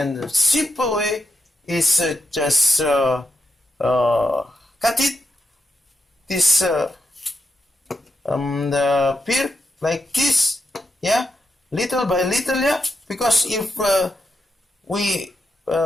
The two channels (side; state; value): both; normal; correlation 0.85